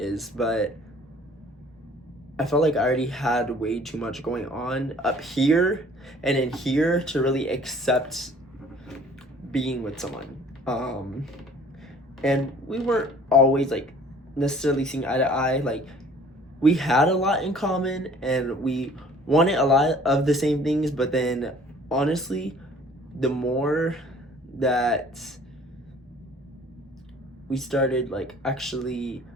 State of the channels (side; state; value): both; normal; correlation 0.53